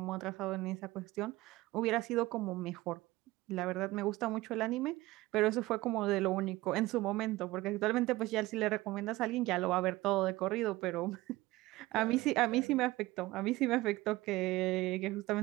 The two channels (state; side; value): quieter; left; 18.8 dB